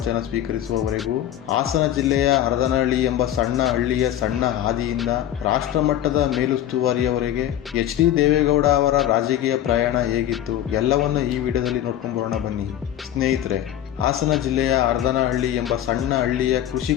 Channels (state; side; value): quieter; right; 11.6 dB